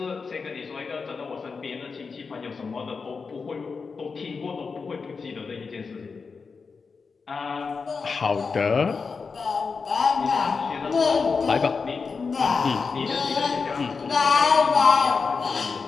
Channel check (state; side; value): quieter; right; 4.9 dB